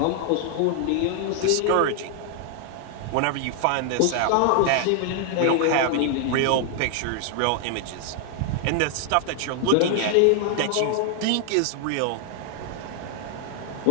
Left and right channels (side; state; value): both; different; correlation 0.00